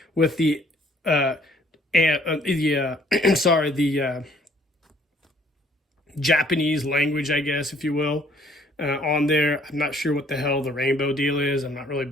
with the Japanese language, I guess, if you will, on there. I'm not sure what the hell the rainbow deal is. I'm not really a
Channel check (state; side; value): normal; both; correlation 0.61